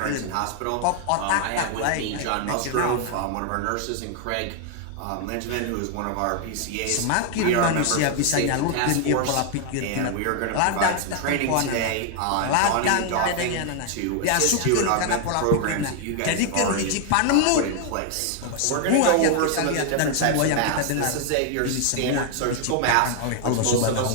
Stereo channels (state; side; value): different; both; correlation 0.00